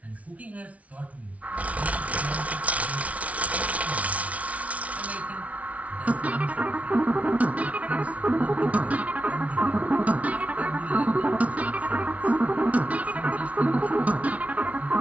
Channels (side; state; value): left; late; 0.067 ms